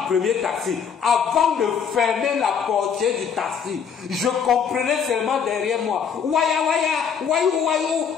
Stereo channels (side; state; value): right; quieter; 7.1 dB